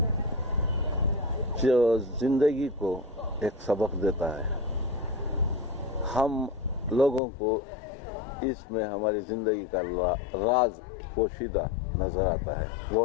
जो ज़िंदगी को एक सबक देता है, हम लोगों को इसमें हमारी ज़िंदगी का राज पोशीदा नज़र आता है। वो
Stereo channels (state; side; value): drops out; right; at 7.2 s